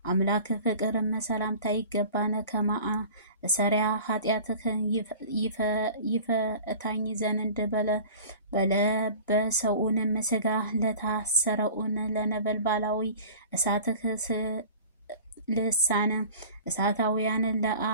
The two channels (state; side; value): inverted; both; correlation -0.42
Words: አምላክ ፍቅርም ሰላምታ ይገባን። ሰሪያ ኃጢአትህን ይፈታኝ ዘንድ በለበሰውንም ስጋ ለታሰረውን ለነበልባላዊ እሳትህ ልሳነ እሳታውያን